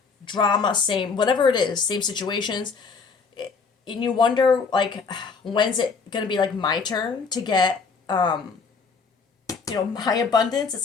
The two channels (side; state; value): right; quieter; 5.0 dB